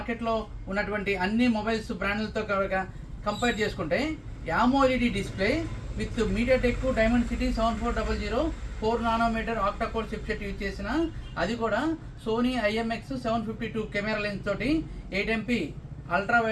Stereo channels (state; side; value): identical; both; correlation 1.00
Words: ఉన్నటువంటి అన్ని మొబైల్స్ బ్రాండ్లతో కంపేర్ చేసుకుంటే AMOLED display with MediaTek Dimensity 7400 4 nanometre octa core chipset use చేసిన, అది కూడా సోనీ IMX 752 కెమెరా లెన్స్ తోటి, 8 MP ultra